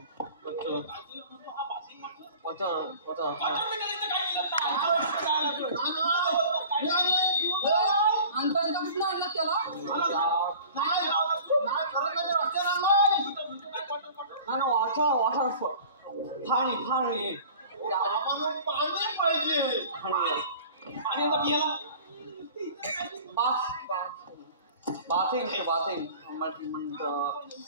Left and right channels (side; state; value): both; inverted; correlation -0.43